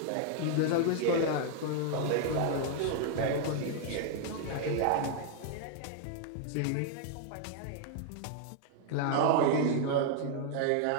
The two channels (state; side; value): different; both; correlation 0.00